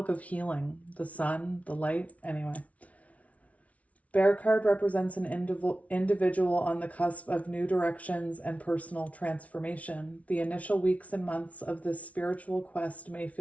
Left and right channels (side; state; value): right; late; 0.067 ms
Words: of healing, the sun, the light, anyway. Bear card represents an individual on the cusp of new directions and personal transformation. The initial weeks and months of this spiritual quest may